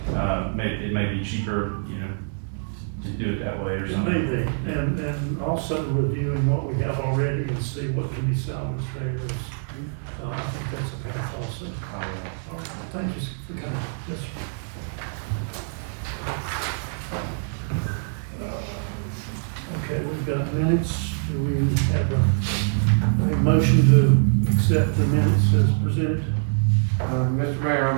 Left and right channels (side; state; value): left; silent; digital silence